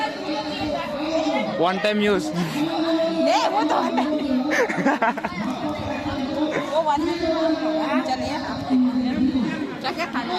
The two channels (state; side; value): identical; both; correlation 1.00